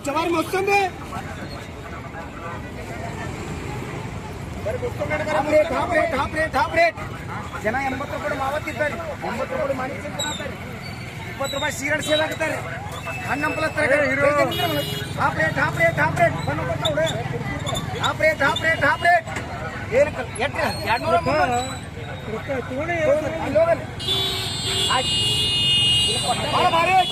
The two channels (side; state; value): both; identical; correlation 1.00